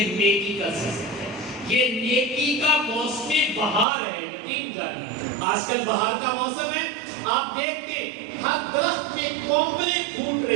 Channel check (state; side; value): drops out; left; at 3.9 s